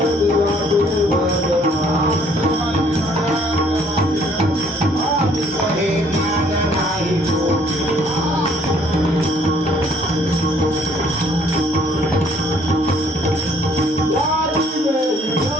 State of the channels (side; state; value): both; normal; correlation 0.62